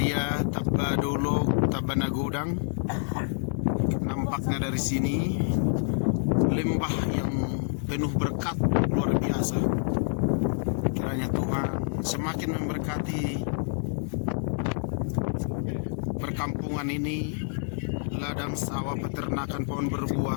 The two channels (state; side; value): silent; right; 60 dB below the other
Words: Tabadolok, Tabanagodang. Nampaknya dari sini lembah yang penuh berkat luar biasa. Kiranya Tuhan semakin memberkati perkampungan ini, ladang sawah, peternakan, pohon